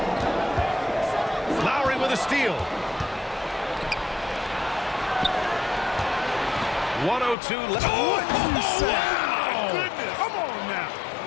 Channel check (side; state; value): right; drops out; at 7.4 s